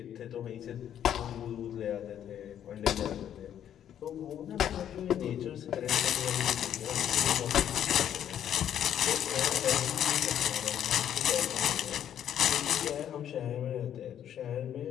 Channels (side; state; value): right; quieter; 10.0 dB